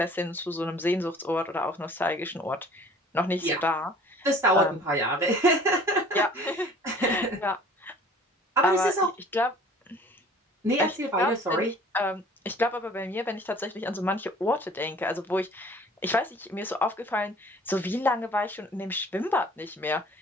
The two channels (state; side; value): normal; both; correlation 0.50